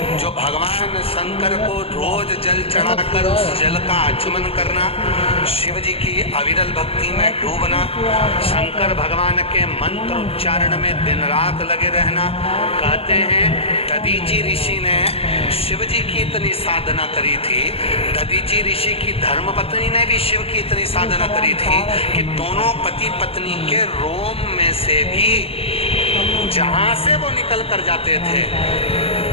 जो भगवान शंकर को रोज जल चढ़ाकर उस जल का आचमन करना, शिव जी की अविरल भक्ति में डूबना, शंकर भगवान के मंत्र उच्चारण में दिन रात लगे रहना। कहते हैं दधीची ऋषि ने शिव जी की इतनी साधना करी थी, दधीची ऋषि की धर्मपत्नी ने भी शिव की इतनी साधना करी थी कि दोनों पति पत्नी के रोम में से भी जहां से वो निकल कर जाते थे,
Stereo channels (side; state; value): right; late; 0.28 ms